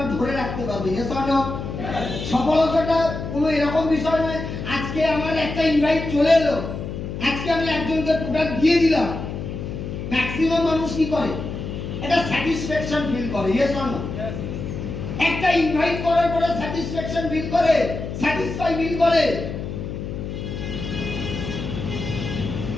ধরে রাখতে পারবে। Yes or no? সফলতাটা কোনো এরকম বিষয় নয় আজকে আমার একটা ইনভাইট চলে এলো, আজকে আমি একজনকে প্রোডাক্ট দিয়ে দিলাম। ম্যাক্সিমাম মানুষ কি করে? এটা স্যাটিসফ্যাকশন ফিল করে। Yes or no? একটা ইনভাইট করার পরে স্যাটিসফ্যাকশন ফিল করে, স্যাটিসফাই ফিল করে।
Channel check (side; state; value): left; noise; hum, 7 dB below the sound